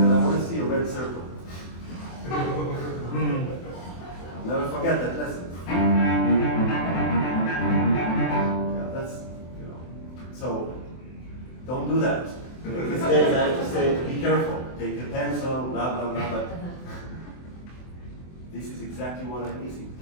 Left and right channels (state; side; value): late; right; 24 ms